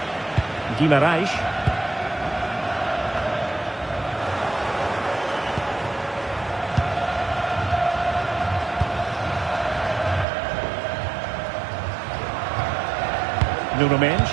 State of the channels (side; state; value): left; drops out; at 10.2 s